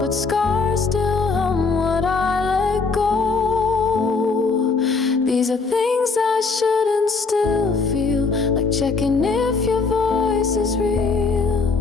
scars still hum what I let go. These are things I shouldn't still feel, like checking if your voice is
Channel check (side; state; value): right; quieter; 4.4 dB